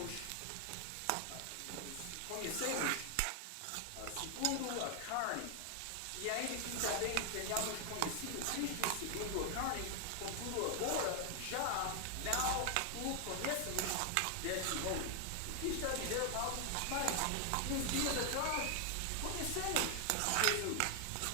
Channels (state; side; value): different; both; correlation 0.00